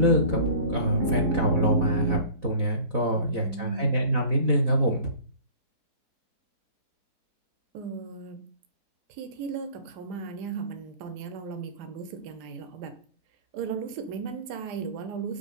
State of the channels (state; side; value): late; left; 4.0 ms